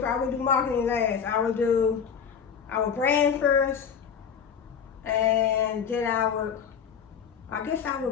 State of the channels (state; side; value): quieter; right; 7.2 dB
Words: I would do marketing last. I would brand first, and then I